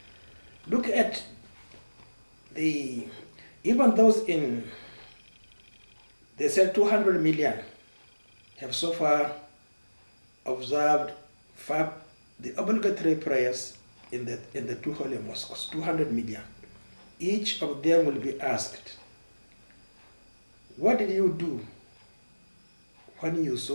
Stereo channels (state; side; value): inverted; both; correlation -1.00